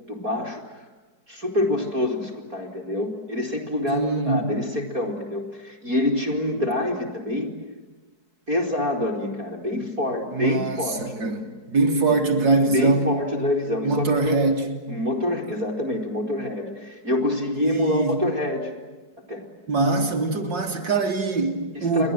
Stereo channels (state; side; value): late; left; 4.7 ms